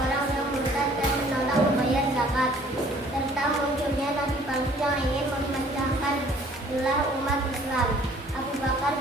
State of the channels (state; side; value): normal; both; correlation 0.56